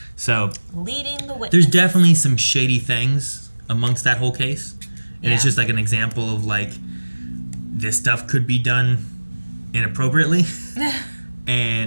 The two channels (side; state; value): both; inverted; correlation -1.00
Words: So, leading the witness. There's definitely some shady things amongst that whole case. And it's just like an example of like, this stuff could be done inappropriately